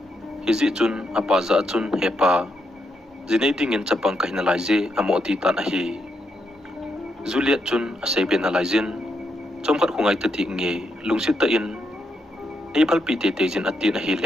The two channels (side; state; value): both; normal; correlation 0.81